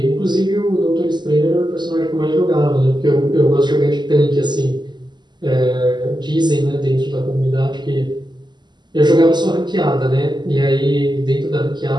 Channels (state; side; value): late; left; 0.21 ms